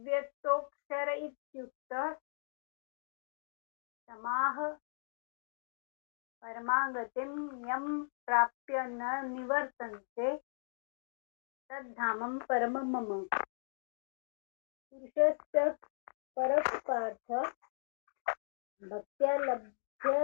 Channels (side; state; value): right; silent; digital silence